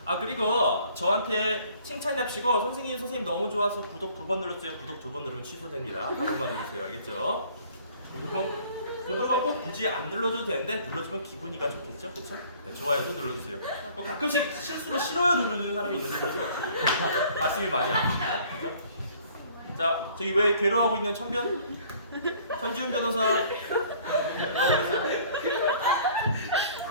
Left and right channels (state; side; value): inverted; both; correlation -0.55